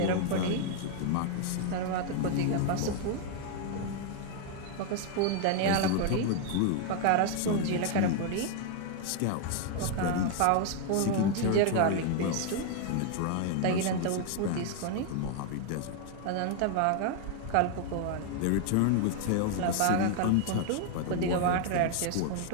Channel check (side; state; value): both; different; correlation 0.00